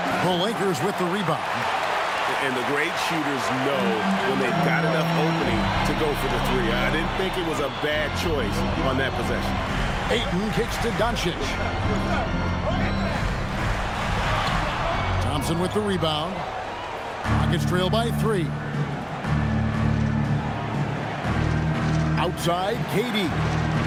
the Lakers with the rebound. And the great shooters know when they've got enough opening to go for the three. I didn't think it was a bad choice on that possession. Ayton kicks to Doncic. Thompson with the rebound. Rockets trail by 3. Outside, KD.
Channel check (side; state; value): both; identical; correlation 1.00